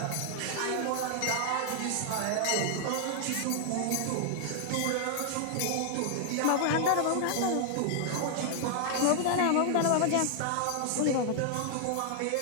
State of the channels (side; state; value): both; different; correlation 0.00